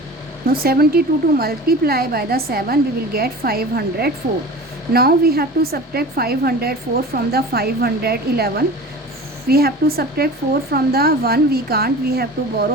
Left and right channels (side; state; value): both; normal; correlation 0.37